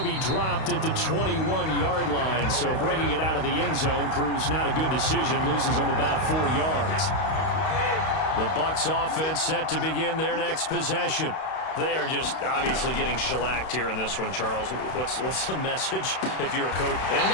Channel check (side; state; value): right; late; 32 ms